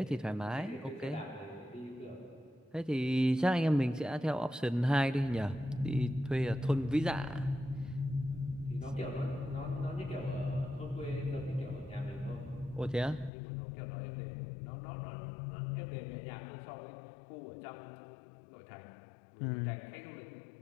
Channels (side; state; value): right; drops out; at 13.3 s